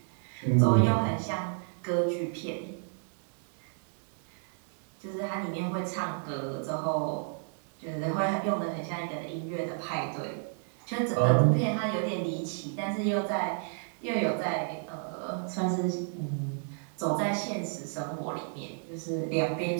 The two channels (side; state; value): left; silent; 57 dB below the other